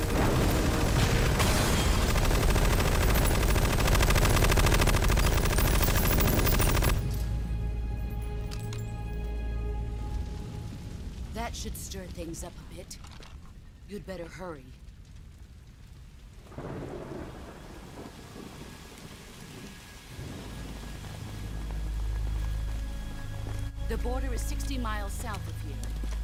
That should stir things up a bit. You'd better hurry. The border is 60 miles south of here.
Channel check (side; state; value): both; identical; correlation 1.00